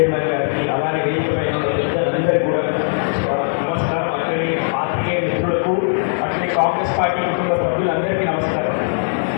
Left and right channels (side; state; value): right; silent; digital silence